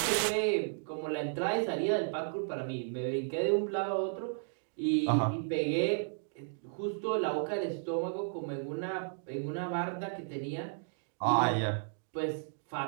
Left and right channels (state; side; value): silent; left; digital silence